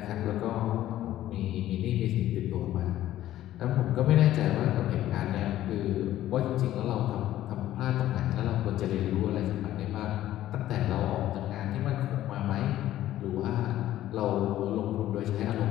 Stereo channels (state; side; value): quieter; right; 13.5 dB